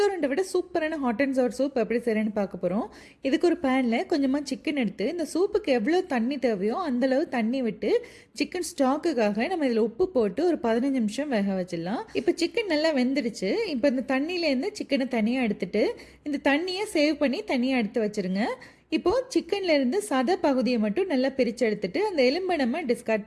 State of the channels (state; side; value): identical; both; correlation 1.00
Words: விட சூப்பரான ஹாட் அண்ட் சவர் சூப் எப்படி செய்கிறேன்னு பார்க்க போகிறோம். இதுக்கு ஒரு பேனில் கொஞ்சமாக சிக்கன் எடுத்து இந்த சூப்புக்கு எவ்வளோ தண்ணி தேவையோ அந்தளவு தண்ணி விட்டு சிக்கன் ஸ்டாக்குக்காக நம்ம இதில் உப்பு போட்டு ஒரு 15 நிமிஷம் வேக வச்சிடலாம். இப்போ சிக்கன் நல்லா வெந்துடுச்சு. இப்போ இந்த தண்ணியிலேருந்து சிக்கனை தனியாக எடுத்துட்டு இந்த தண்ணியை சேவ் பண்ணி தனியாக எடுத்து வச்சுருங்க. இப்போது சிக்கன்லேருந்து சதை பகுதியை மட்டும் நல்லா பிரித்து எடுத்துட்டு அந்த எலும்பை நம்ம டிஸ்கார்ட்